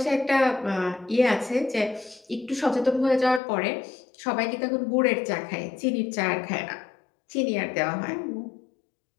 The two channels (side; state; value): right; drops out; at 3.4 s